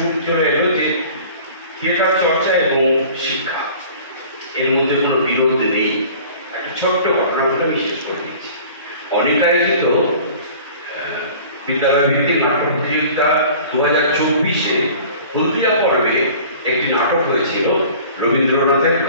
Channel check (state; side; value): inverted; both; correlation -0.45